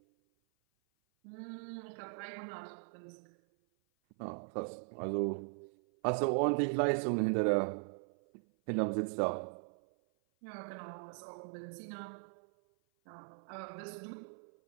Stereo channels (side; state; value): left; silent; 52 dB below the other